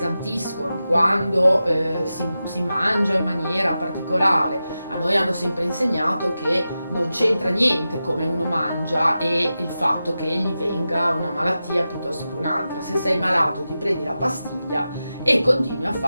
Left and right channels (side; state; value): both; inverted; correlation -0.92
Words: quando si mangia in maniera particolare, a noi hanno sempre insegnato che non c'entra niente come uno mangia e il fatto che gli venga una malattia piuttosto che un'altra. Se sei malato ti prendi la pastiglia e continui a